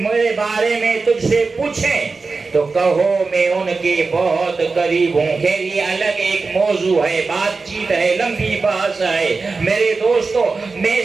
بارے میں تجھ سے پوچھیں تو کہو میں ان کے بہت قریب ہوں۔ خیر یہ الگ ایک موضوع ہے، بات چیت ہے، لمبی بحث ہے۔ میرے دوستو میں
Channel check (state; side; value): quieter; left; 4.2 dB